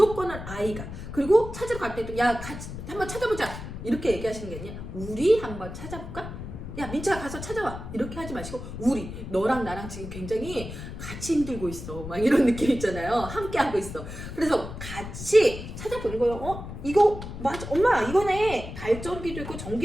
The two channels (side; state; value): left; noise; rumble, 9 dB below the sound